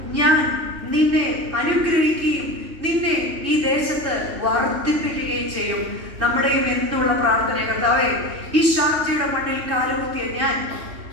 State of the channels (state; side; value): late; left; 2.7 ms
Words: ഞാൻ നിന്നെ അനുഗ്രഹിക്കുകയും നിന്നെ ഈ ദേശത്ത് വർദ്ധിപ്പിക്കുകയും ചെയ്യും. നമ്മുടെയും എന്നുള്ള പ്രാർത്ഥന, കർത്താവേ, ഈ ഷാർജയുടെ മണ്ണിൽ കാലുകുത്തിയ